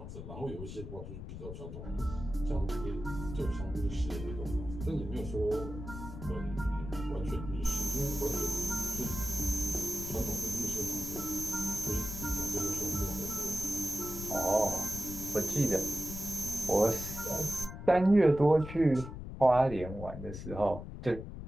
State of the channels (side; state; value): left; noise; rumble, 9 dB below the sound